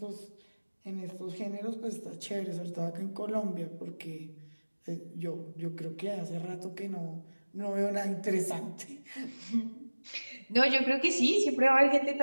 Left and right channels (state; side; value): inverted; both; correlation -1.00